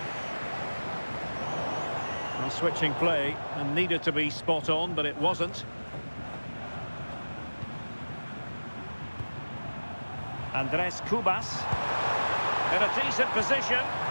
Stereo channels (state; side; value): inverted; both; correlation -1.00